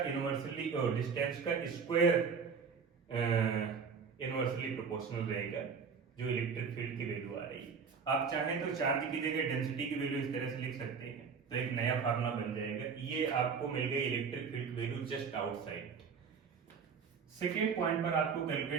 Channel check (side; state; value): left; quieter; 5.9 dB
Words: इनवर्सली और डिस्टेंस का स्क्वायर इनवर्सली प्रोपोर्शनल रहेगा जो इलेक्ट्रिक फील्ड की वैल्यू आ रही है। आप चाहें तो चार्ज की जगह डेंसिटी की वैल्यू इस तरह से लिख सकते हैं तो एक नया फार्मूला बन जाएगा। ये आपको मिल गई electric field value just outside. Second point पर आपको